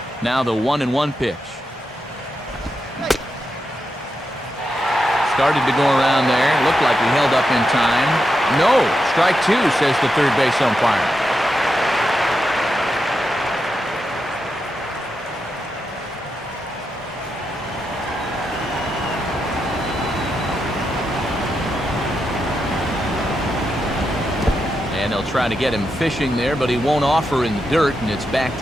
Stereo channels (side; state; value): both; normal; correlation 0.86